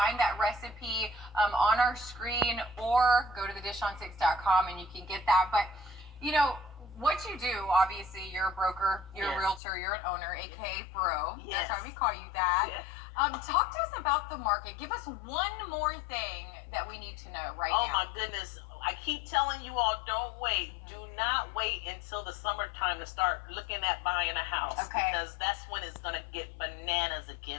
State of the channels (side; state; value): right; drops out; at 9.6 s